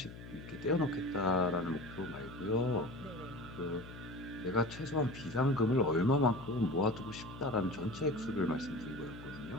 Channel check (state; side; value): noise; left; hum, 14 dB below the sound